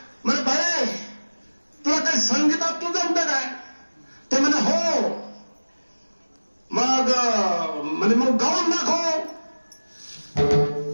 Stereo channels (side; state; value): both; inverted; correlation -1.00